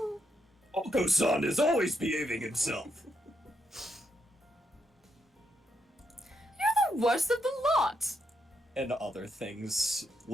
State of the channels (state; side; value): normal; both; correlation 0.79